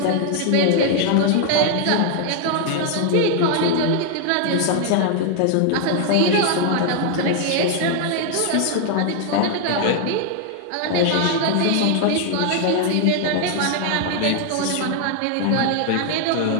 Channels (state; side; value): different; both; correlation 0.00